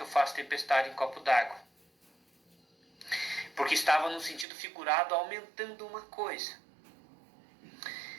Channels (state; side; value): drops out; left; at 4.5 s